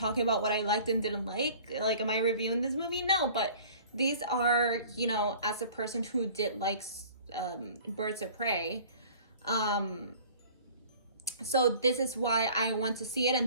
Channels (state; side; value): inverted; both; correlation -0.47